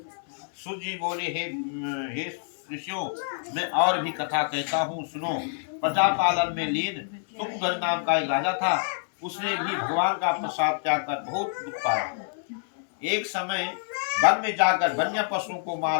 सूत जी बोले, हे ऋषियों, मैं और भी कथा कहता हूँ, सुनो। प्रजा पालन में लीन सुखध्वज नाम का एक राजा था। उसने भी भगवान का प्रसाद त्याग कर बहुत दुख पाया। एक समय वन में जाकर वन्य पशुओं को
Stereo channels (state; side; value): silent; right; 60 dB below the other